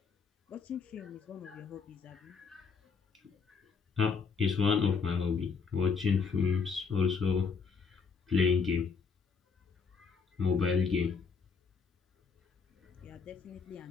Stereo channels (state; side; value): quieter; right; 5.4 dB